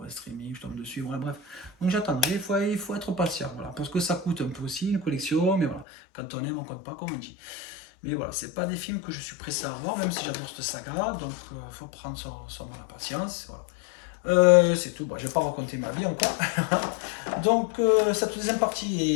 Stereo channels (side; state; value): right; drops out; at 5.9 s